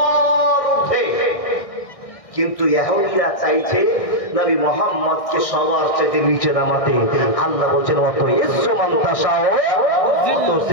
ঊর্ধ্বে, কিন্তু ইহুদিরা চাইছে নবী মুহাম্মদকে সবার চাইতে নিচে নামাতে। আল্লাহ বলছেন, অত ইজ্জু মান তাশা অত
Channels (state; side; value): late; right; 1.6 ms